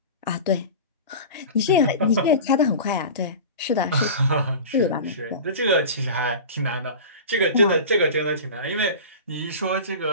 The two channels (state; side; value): inverted; both; correlation -0.33